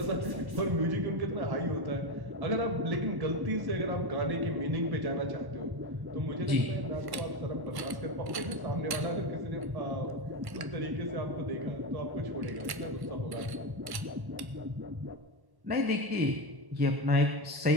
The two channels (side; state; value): left; late; 1.1 ms